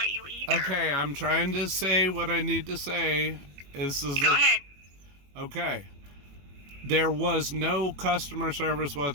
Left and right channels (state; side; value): late; left; 21 ms